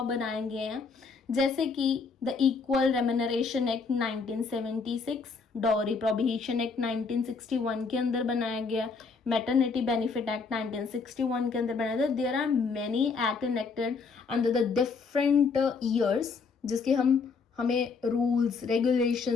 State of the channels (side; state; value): right; quieter; 4.8 dB